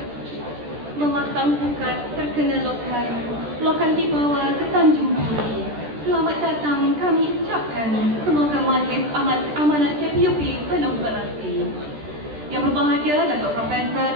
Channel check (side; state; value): left; late; 13 ms